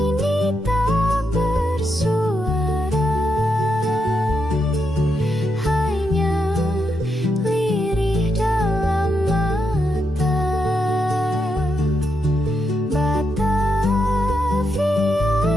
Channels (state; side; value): normal; both; correlation 0.82